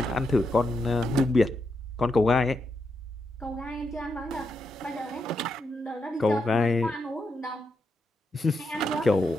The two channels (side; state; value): both; normal; correlation 0.83